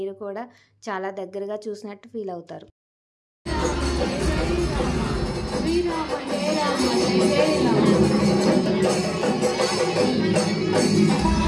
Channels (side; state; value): both; identical; correlation 1.00